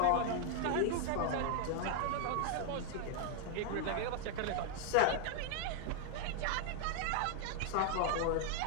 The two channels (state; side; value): different; both; correlation 0.00